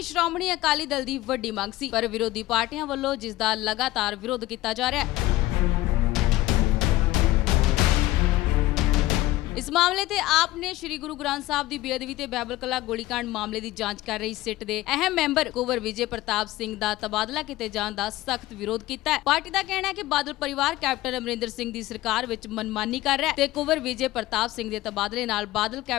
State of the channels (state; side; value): quieter; right; 17.0 dB